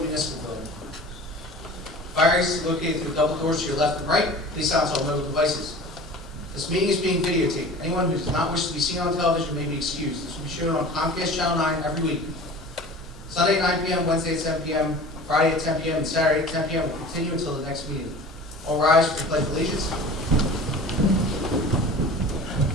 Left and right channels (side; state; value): both; normal; correlation 0.40